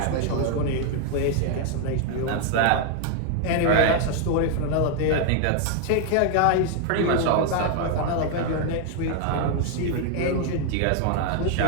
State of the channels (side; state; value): both; different; correlation 0.00